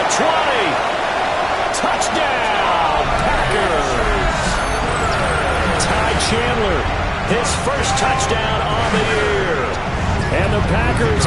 20. Touchdown, Packers. Ty Chandler, his first touchdown on the year. And the Packers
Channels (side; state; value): both; identical; correlation 1.00